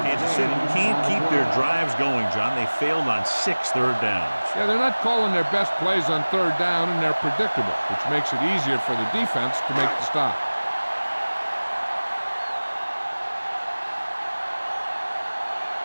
Kansas City can't keep their drives going, John. They failed on 6 third downs. Yeah, they're not calling their best plays on third down, and they're predictable, which makes it easier for the defense to make the stop.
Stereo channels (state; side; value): inverted; both; correlation -1.00